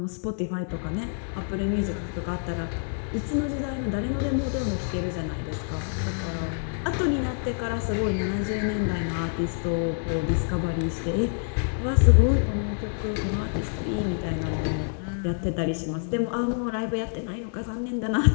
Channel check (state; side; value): silent; right; 60 dB below the other